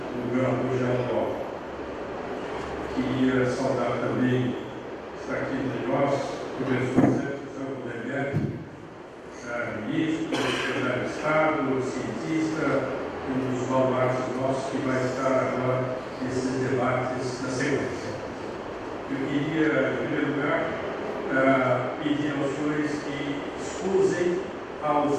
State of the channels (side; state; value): both; identical; correlation 1.00